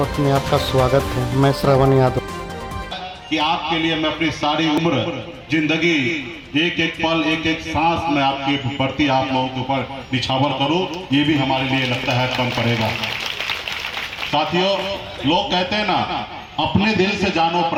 में आपका स्वागत है। मैं श्रवण यादव। कि आपके लिए मैं अपनी सारी उम्र जिंदगी एक एक पल एक एक सांस में आपके प्रति आप लोगों के ऊपर निछावर करूं, ये भी हमारे लिए लगता है कम पड़ेगा। साथियों, लोग कहते हैं ना, अपने दिल से जानो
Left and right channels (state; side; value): identical; both; correlation 1.00